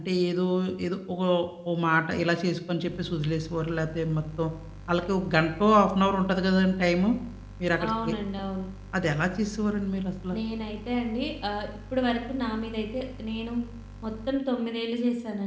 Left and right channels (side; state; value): both; identical; correlation 1.00